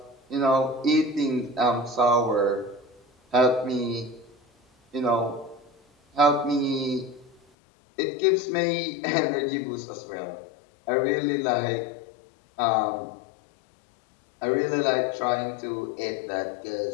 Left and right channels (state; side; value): drops out; right; at 7.4 s